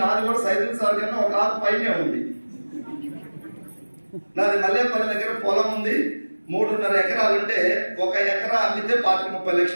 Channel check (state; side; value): inverted; both; correlation -1.00